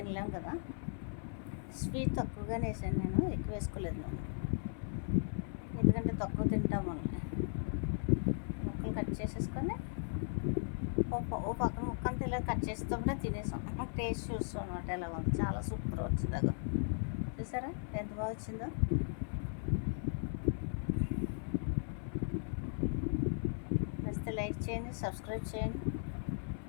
కదా. స్వీట్ తక్కువగానే వేసాను నేను, ఎక్కువ వేసుకోలేదు నేను, ఎందుకంటే తక్కువ తింటాం వాళ్ళని. ముక్కలు కట్ చేసేసుకొని ఓ పక్కన ముక్క అంతా ఇలా కట్ చేస్తుంటే తినేసాం. టేస్ట్ చూస్తాం అనమాట ఎలా ఉంది. చాలా సూపర్ వచ్చింది. అదో చూసారా ఎంత బాగా వచ్చిందో. నచ్చితే లైక్ చేయండి, సబ్స్క్రైబ్ చేయండి.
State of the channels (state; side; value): silent; right; 53 dB below the other